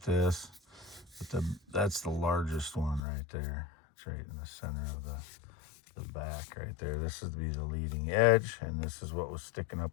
this. But that's the largest one right there. It's right in the center of the back right there. This is to be the leading edge, and this is what was sticking up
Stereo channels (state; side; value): drops out; right; at 3.0 s